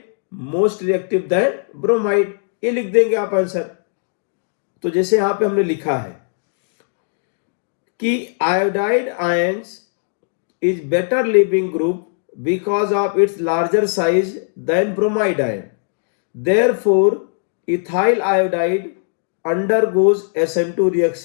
most reactive then bromide, ये लिख देंगे आप आंसर। तो जैसे यहां पे हमने लिखा है कि iodide ions is better leaving group because of its larger size than bromide ion, therefore ethyl iodide undergoes SN2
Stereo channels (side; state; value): right; silent; digital silence